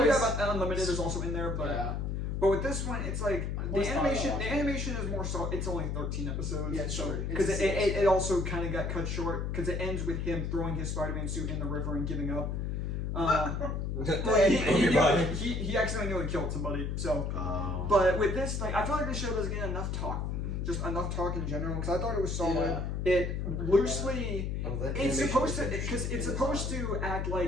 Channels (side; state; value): left; noise; hum, 2 dB below the sound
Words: Unlimited is also in there, but Yeah. but with this one, it's like the always thought about animation. The watching animation is more so. It's only 13 episodes. Yeah, it's short. Because It's it also kind of got cut short because it ends with him throwing his Spider-Man suit in the river and giving up. He accidentally nearly killed somebody. So, but with this, like, I feel like this show doesn't get enough talk, just enough talk in general. Because I thought it was solid. Yeah. It loosely, that it's animation supposed to, is because it's supposed to act